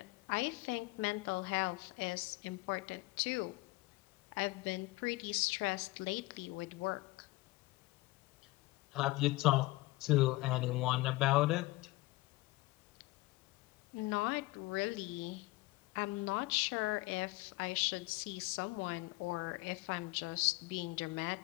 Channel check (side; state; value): right; quieter; 21.0 dB